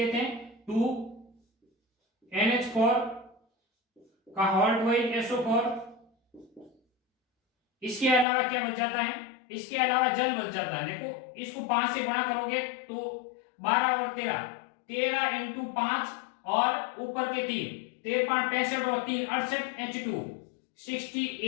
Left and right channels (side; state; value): right; drops out; at 8.2 s